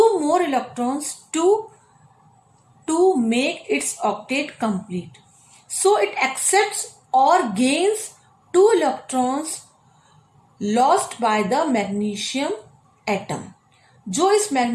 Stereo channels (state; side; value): identical; both; correlation 1.00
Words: more electrons to make its octet complete. So it accepts or gains 2 electrons lost by the magnesium atom. जो इस